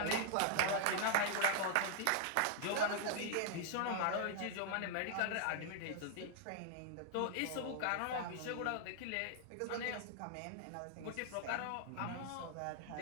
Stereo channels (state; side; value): different; both; correlation 0.00